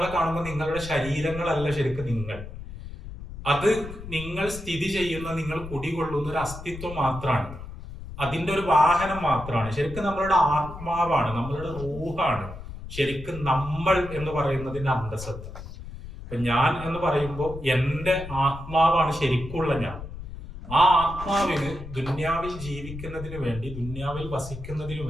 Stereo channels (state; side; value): noise; left; rumble, 11 dB below the sound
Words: കാണുമ്പോൾ നിങ്ങളുടെ ശരീരങ്ങളല്ല ശരിക്കും നിങ്ങൾ. അത് നിങ്ങൾ സ്ഥിതി ചെയ്യുന്ന, നിങ്ങൾ കുടികൊള്ളുന്ന ഒരു അസ്തിത്വം മാത്രമാണ്, അതിന്റെ ഒരു വാഹനം മാത്രമാണ്. ശരിക്കും നമ്മളുടെ ആത്മാവാണ്, നമ്മളുടെ റൂഹാണ് ശരിക്കും നമ്മൾ എന്ന് പറയുന്നതിന്റെ അന്തസത്ത. അപ്പൊ ഞാൻ എന്ന് പറയുമ്പോൾ എന്റെ ആത്മാവാണ് ശരിക്കുള്ള ഞാൻ. ആ ആത്മാവിന് ദുന്യാവിൽ ജീവിക്കുന്നതിന് വേണ്ടി, ദുന്യാവിൽ വസിക്കുന്നതിന്